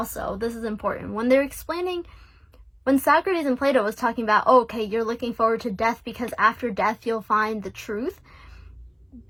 this is important, when Socrates and Plato was talking about, oh, okay, you're looking forward to death because after death you'll find the truth,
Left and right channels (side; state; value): both; identical; correlation 1.00